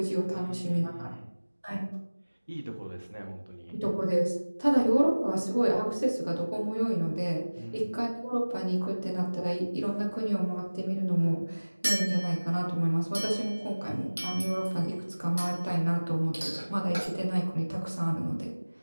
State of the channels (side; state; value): both; inverted; correlation -1.00